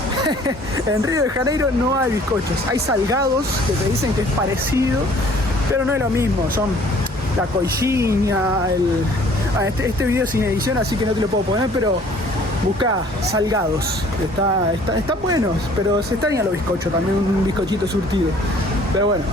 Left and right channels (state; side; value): normal; both; correlation 0.55